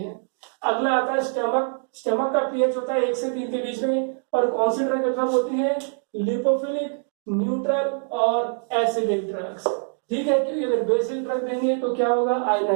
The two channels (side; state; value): left; silent; 62 dB below the other